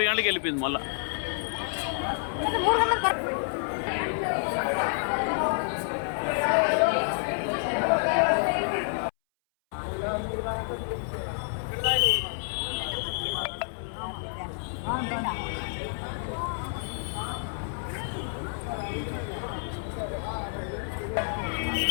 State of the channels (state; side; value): silent; right; 59 dB below the other